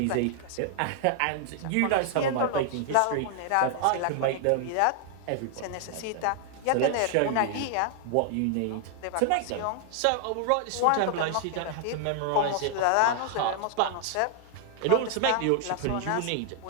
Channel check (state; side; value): different; both; correlation 0.00